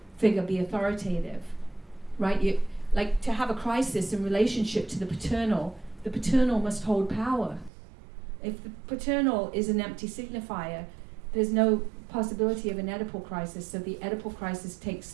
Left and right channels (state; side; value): drops out; left; at 7.7 s